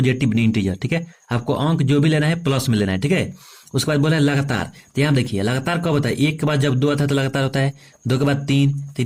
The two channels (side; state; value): both; identical; correlation 1.00